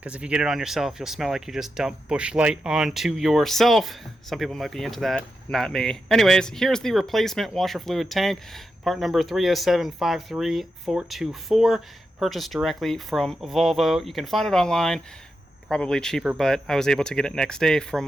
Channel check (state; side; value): normal; both; correlation 0.87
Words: if you get it on yourself, you'll smell like you just dumped Busch Light onto yourself. Some people might be into that, not me. Anyways, here's the replacement washer fluid tank, part number 307-53424, purchased directly from Volvo. You can find it online, probably cheaper, but I was able to get it next day from